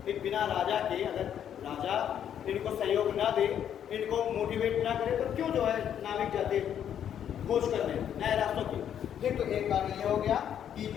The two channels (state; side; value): quieter; right; 9.4 dB